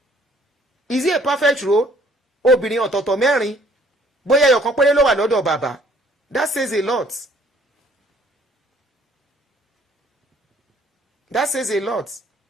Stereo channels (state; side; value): normal; both; correlation 0.60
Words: Is he a perfect role? Obìnrin ọ̀tọ̀ọ̀tọ̀ mẹ́rin. Bóyá ẹyọ̀kan péré ló wà lọ́dọ̀ bàbá. That says a lot. That says a lot.